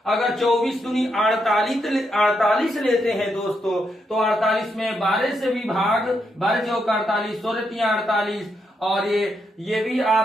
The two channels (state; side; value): normal; both; correlation 0.81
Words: अगर 24 दूनी 48 लेते हैं दोस्तों, तो 48 में 12 से भी भाग, 12 चौक 48, 16 3 48, और ये भी